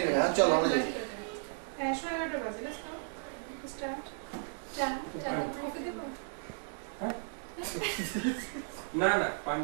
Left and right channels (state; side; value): silent; left; digital silence